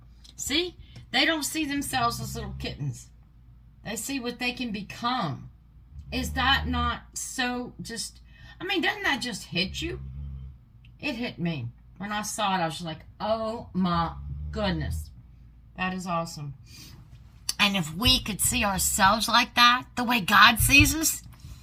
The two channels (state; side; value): identical; both; correlation 1.00